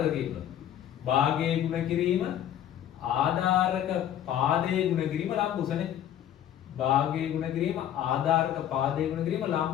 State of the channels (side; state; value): right; quieter; 10.9 dB